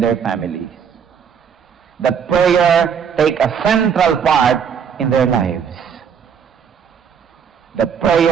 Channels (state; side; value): quieter; left; 7.3 dB